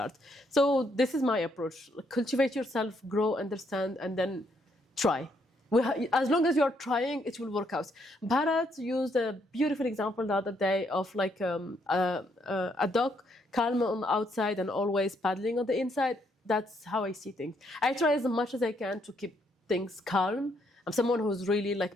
So this is my approach. Cultivate yourself, grow, understand, and then try. As long as you're trying, it will work out. Bharat used a beautiful example the other day of like a dog calm on the outside and always paddling on the inside. That's how I see things. I try as much as I can to keep things calm. I'm someone who's really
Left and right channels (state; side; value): normal; both; correlation 0.73